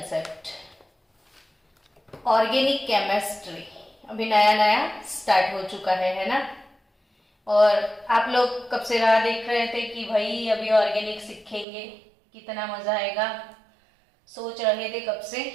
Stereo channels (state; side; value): drops out; left; at 11.7 s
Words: Organic chemistry अभी नया नया start हो चुका है ना। और आप लोग कब से राह देख रहे थे कि भाई अभी ऑर्गेनिक सीखेंगे, कितना मजा आएगा, सोच रहे थे कब से।